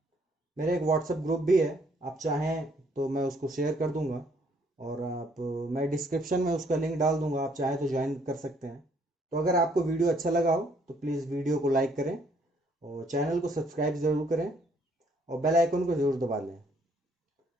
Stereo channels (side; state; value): both; normal; correlation 0.66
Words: मेरा एक व्हाट्सएप ग्रुप भी है, आप चाहें तो मैं उसको शेयर कर दूंगा, और आप मैं डिस्क्रिप्शन में उसका लिंक डाल दूंगा, आप चाहें तो ज्वाइन कर सकते हैं। तो अगर आपको वीडियो अच्छा लगा हो तो प्लीज़ वीडियो को लाइक करें और चैनल को सब्सक्राइब ज़रूर करें और बेल आइकन को ज़रूर दबा लें।